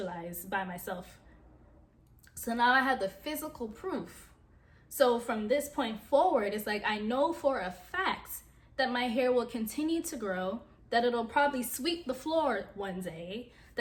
by myself. So now I have the physical proof. So from this point forward, it's like I know for a fact that my hair will continue to grow, that it'll probably sweep the floor one day,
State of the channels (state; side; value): identical; both; correlation 1.00